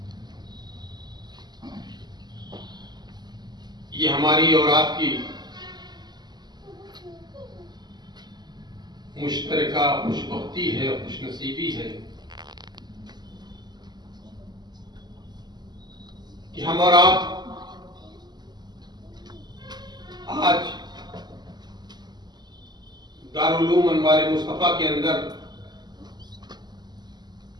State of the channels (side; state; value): left; late; 0.21 ms